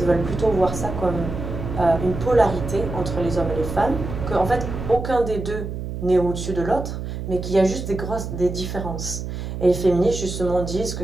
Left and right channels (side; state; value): right; noise; hum, 6 dB below the sound